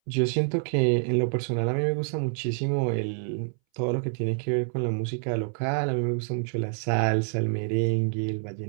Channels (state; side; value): silent; left; 60 dB below the other